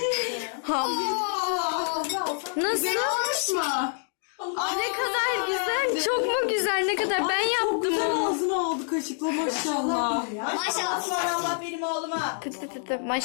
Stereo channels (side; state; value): right; silent; 60 dB below the other